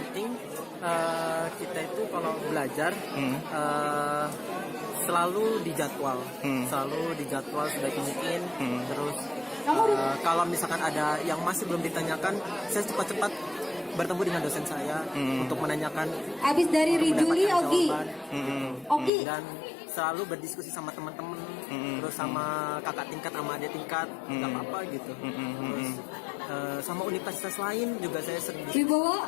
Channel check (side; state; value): right; drops out; at 19.1 s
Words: kita itu kalau belajar selalu dijadwal, sebaik mungkin. Terus kalau misalkan ada yang masih belum ditanyakan, saya cepat-cepat bertemu dengan dosen saya untuk menanyakan. Abis dari Rijuli, mendapatkan Ogi. jawaban. Ogi. Dan selalu berdiskusi sama teman-teman, terus sama kakak tingkat, sama adik tingkat, nggak apa-apa gitu. Terus sama universitas lain juga saya sering diskusi Wibowo?